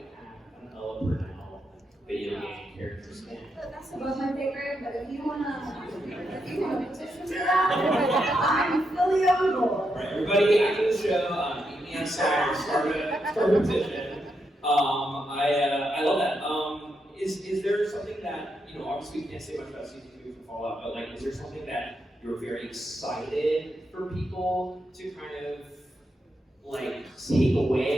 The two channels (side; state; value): both; normal; correlation 0.82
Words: have an Ella Purnell video game character skin? That's about my favorite, but if you wanna petition for that, I'm fully on board. Right, everybody after the show, meet me outside, start a petition. I love that. Is there something that, obviously we can't say much about season 2 from Fallout, but is there something that you're very excited for people to kind of take